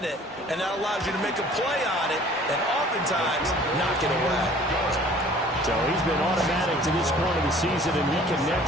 And that allows you to make a play on it and oftentimes knock it away. So he's been automatic to this point of the season, and he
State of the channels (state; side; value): normal; both; correlation 0.51